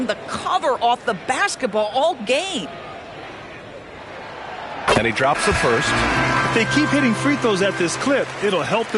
the cover off the basketball all game. And he drops the first. If they keep hitting free throws at this clip, it'll help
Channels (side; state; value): both; identical; correlation 1.00